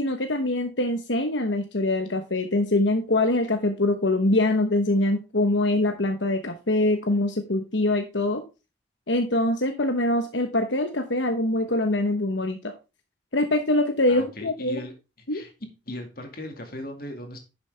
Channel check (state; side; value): normal; both; correlation 0.23